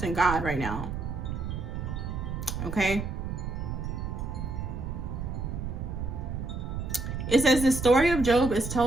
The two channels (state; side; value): noise; right; rumble, 4 dB below the sound